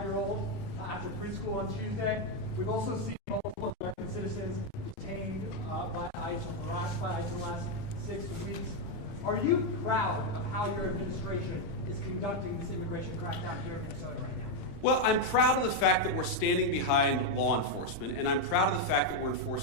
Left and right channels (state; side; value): late; right; 31 ms